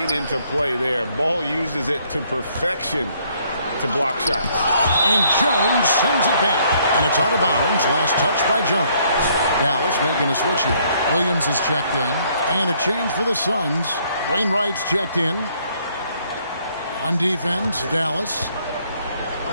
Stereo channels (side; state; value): both; inverted; correlation -0.66